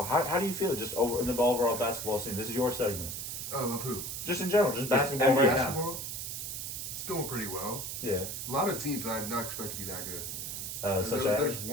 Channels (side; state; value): right; noise; hiss, 5 dB below the sound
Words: how do you feel just over in the overall basketball scene? This is your segment. Of who? Just in general, just basketball NBA. right now. Basketball? It's going pretty well. Yeah. A lot of teams that I did not expect to be that good. Such There's as